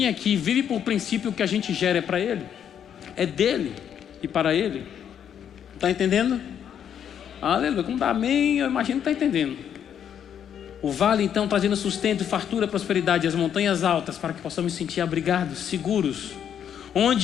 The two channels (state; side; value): quieter; right; 8.9 dB